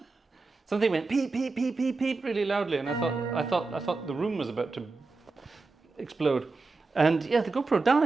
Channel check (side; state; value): left; quieter; 3.8 dB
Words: Something went peep peep peep peep peep really loudly, and I thought the room was about to explode. And yeah, the GoPro